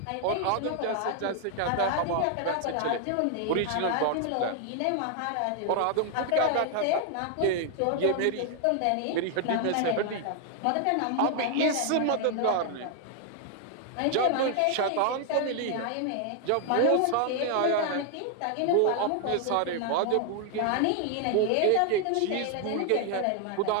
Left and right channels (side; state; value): both; different; correlation 0.00